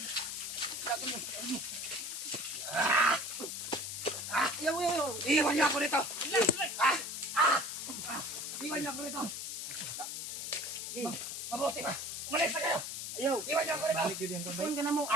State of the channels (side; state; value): left; noise; hiss, 5 dB below the sound